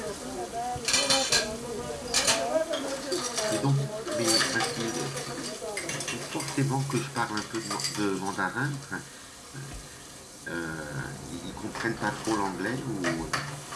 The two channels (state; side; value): identical; both; correlation 1.00